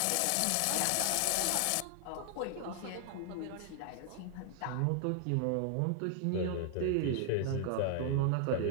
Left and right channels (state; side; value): different; both; correlation 0.00